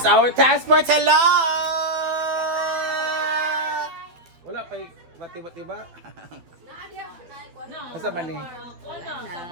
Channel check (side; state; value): left; late; 12 ms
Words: our transport. Hello! Wala pa matiba-tiba. Masa man eh?